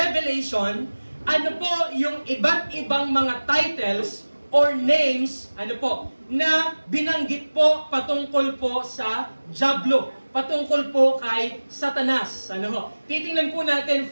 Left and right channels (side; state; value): both; inverted; correlation -1.00